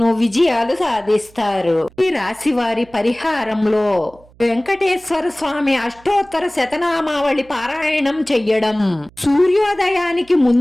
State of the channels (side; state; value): right; noise; hum, 27 dB below the sound